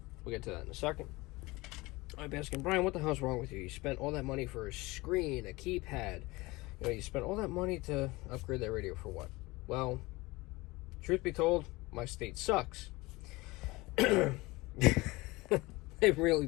We'll get to that in a second. I'm asking, Brian, what the hell's wrong with you? You spent all that money for a screen, a keypad. You spent all that money to upgrade that radio for what? Well, truth be told, my state sucks. It really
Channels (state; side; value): quieter; right; 21.9 dB